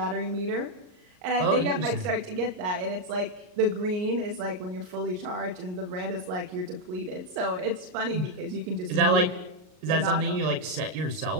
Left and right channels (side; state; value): left; late; 38 ms